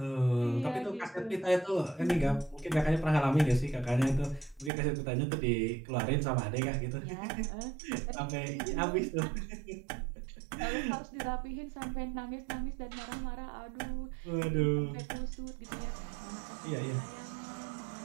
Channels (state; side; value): drops out; left; at 4.7 s